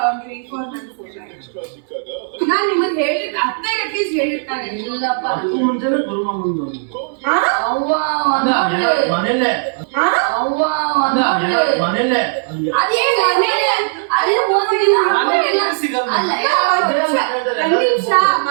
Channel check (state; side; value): silent; left; 63 dB below the other